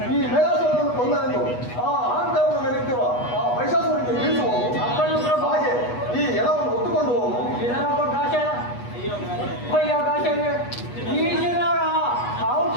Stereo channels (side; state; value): right; late; 8.2 ms